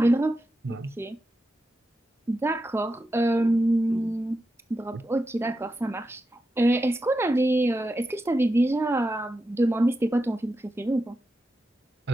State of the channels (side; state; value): both; normal; correlation 0.89